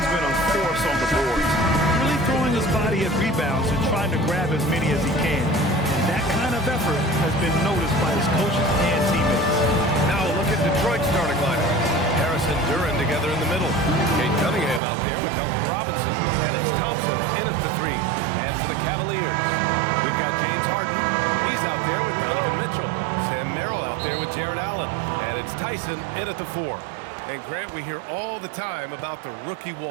been a force on the boards, really throwing his body at rebounds and trying to grab as many as he can. And that kind of effort has been noticed by his coaches and teammates. Now look at Detroit's starting lineup. Harris and Duren together in the middle. Cade Cunningham out there with Duncan Robinson. And it's Thompson in at the 3. And for the Cavaliers, we've got James Harden. He's out there with Donovan Mitchell. Sam Merrill out there with Jared Allen. And it's Tyson in at the 4. And Grant, we hear all the time about the rookie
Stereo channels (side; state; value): left; drops out; at 14.8 s